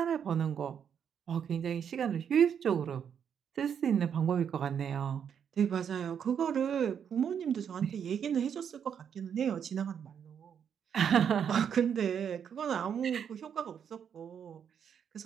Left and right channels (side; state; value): left; quieter; 8.0 dB